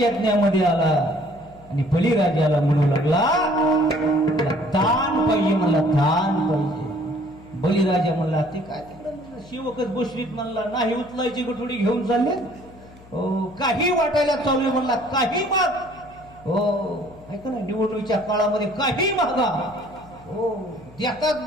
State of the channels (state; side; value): noise; left; hum, 23 dB below the sound